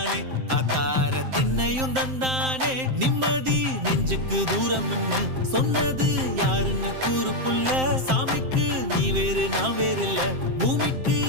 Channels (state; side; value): late; left; 7.7 ms